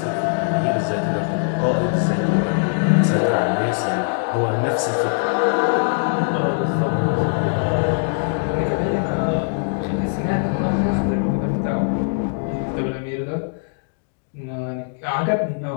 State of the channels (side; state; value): right; silent; digital silence